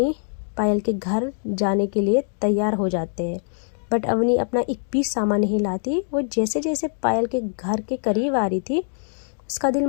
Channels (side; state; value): right; silent; digital silence